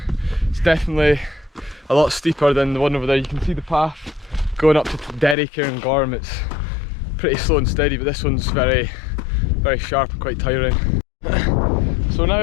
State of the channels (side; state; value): right; drops out; at 5.4 s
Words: is definitely a lot steeper than the one over there. You can see the path going up to Derry cairngorm. It's pretty slow and steady, but this one's very sharp and quite tiring. So we're now